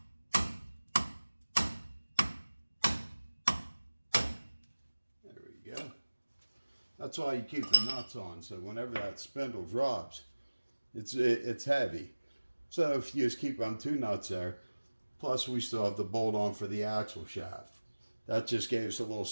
There we go. That's why you keep the nuts on, so whenever that spindle drops, it's heavy. So if you just keep on 2 nuts there, plus we still have the bolt on for the axle shaft. That just gave us a little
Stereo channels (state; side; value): inverted; both; correlation -1.00